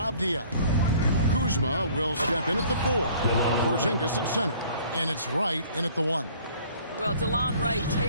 Kuzma will step in at the 4. Porzingis at center. And it's Wright in at the 1. Well, DeLon Wright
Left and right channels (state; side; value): inverted; both; correlation -0.54